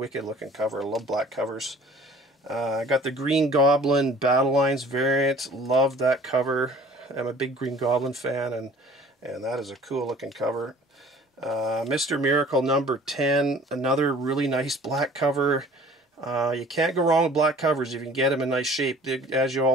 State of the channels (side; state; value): both; normal; correlation 0.50